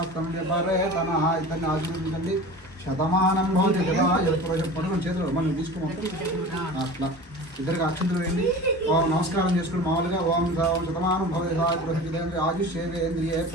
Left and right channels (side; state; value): both; normal; correlation 0.36